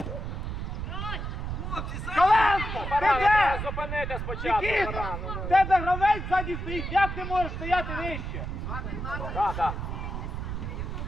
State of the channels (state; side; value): noise; right; rumble, 5 dB below the sound